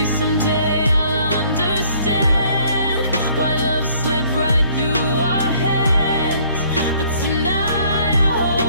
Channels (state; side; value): inverted; both; correlation -0.60